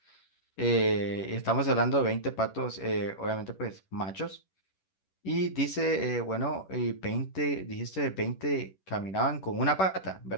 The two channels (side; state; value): right; late; 10 ms